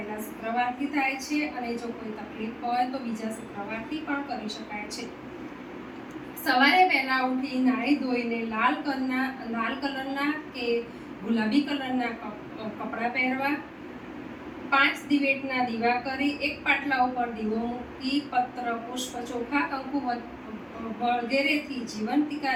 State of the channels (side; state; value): both; identical; correlation 1.00